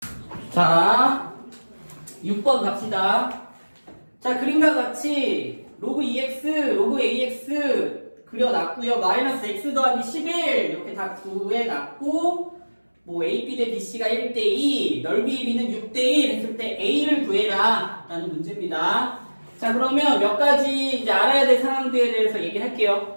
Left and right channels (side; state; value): both; inverted; correlation -1.00